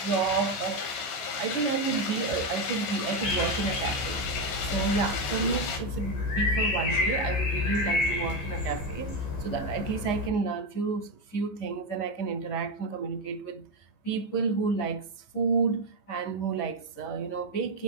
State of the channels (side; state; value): right; late; 15 ms